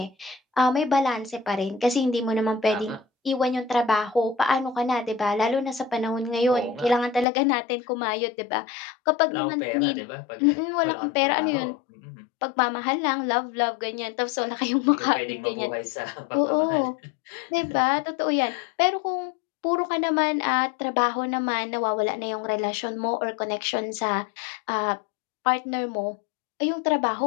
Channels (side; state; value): right; drops out; at 7.2 s